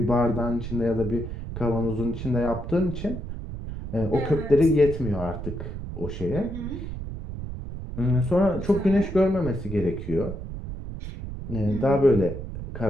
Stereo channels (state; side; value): noise; right; rumble, 8 dB below the sound